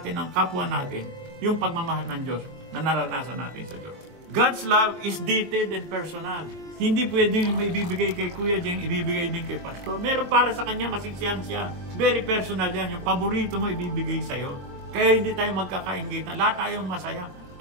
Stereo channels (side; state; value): left; late; 23 ms